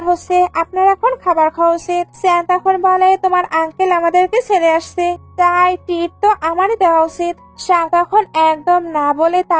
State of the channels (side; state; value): both; identical; correlation 1.00